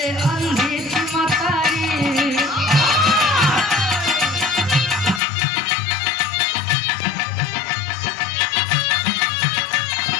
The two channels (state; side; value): drops out; right; at 5.2 s